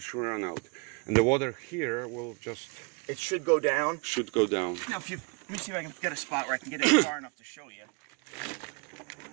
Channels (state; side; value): quieter; left; 31.4 dB